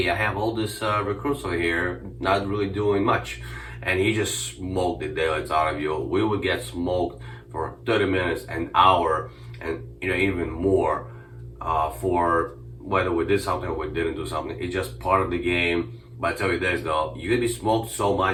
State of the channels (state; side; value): identical; both; correlation 1.00